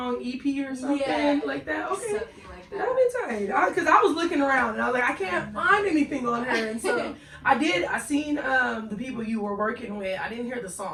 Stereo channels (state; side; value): identical; both; correlation 1.00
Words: EP or something like that. Okay. Something like that. That'll be tight. Because I was looking around and I was like, I can't find anything on her. And so I seen the people you were working with. I didn't hear the